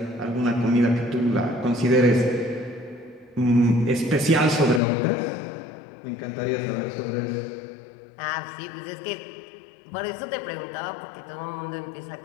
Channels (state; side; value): drops out; right; at 4.8 s